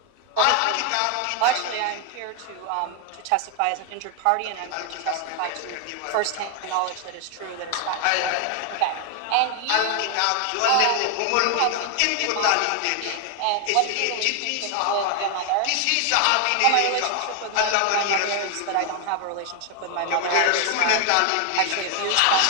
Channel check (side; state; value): both; different; correlation 0.00